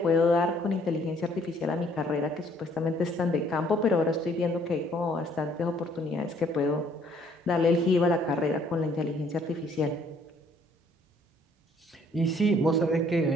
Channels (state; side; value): normal; both; correlation 0.63